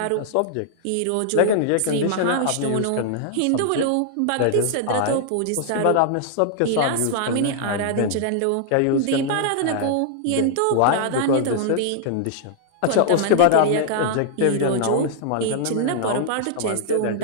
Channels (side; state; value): both; different; correlation -0.01